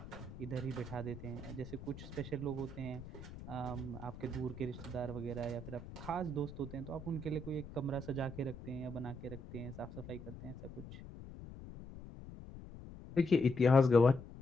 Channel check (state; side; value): noise; left; rumble, 13 dB below the sound